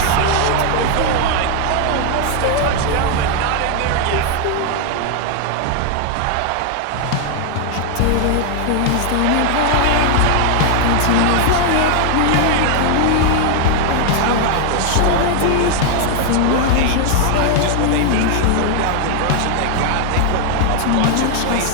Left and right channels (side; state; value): both; different; correlation 0.00